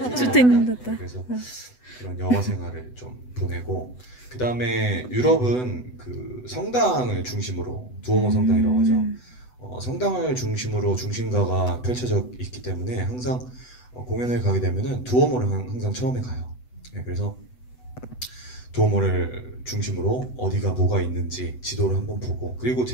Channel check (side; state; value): right; late; 8.0 ms